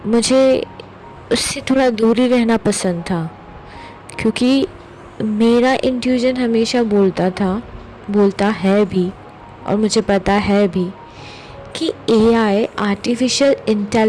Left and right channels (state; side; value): identical; both; correlation 1.00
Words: मुझे उससे थोड़ा दूर ही रहना पसंद था, क्योंकि मेरा इंट्यूजन हमेशा बोलता है भी, और मुझे पता है भी कि एआई आर्टिफिशियल